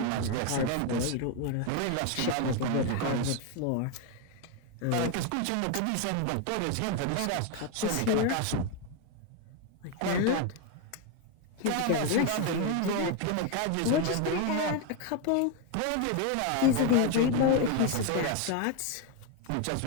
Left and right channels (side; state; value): both; different; correlation 0.01